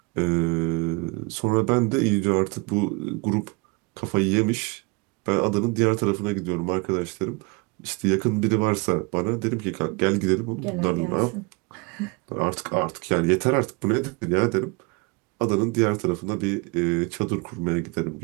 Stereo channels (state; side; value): quieter; left; 28.9 dB